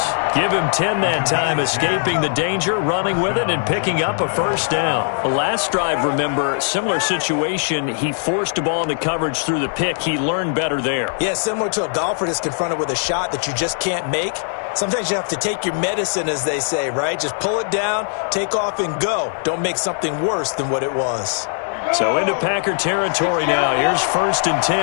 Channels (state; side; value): silent; right; digital silence